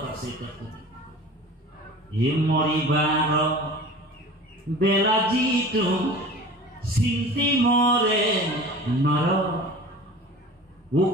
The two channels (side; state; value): both; normal; correlation 0.39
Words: আছে। হে মৰিবাৰ বেলা যিটো চিন্তি মৰে নৰ,